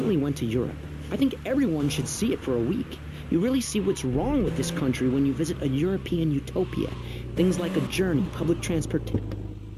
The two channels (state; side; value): identical; both; correlation 1.00